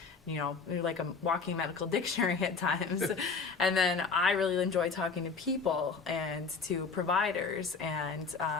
you know, you're like a walking medical dictionary at times. And then I really enjoy talking to people and to providers, and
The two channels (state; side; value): quieter; right; 4.9 dB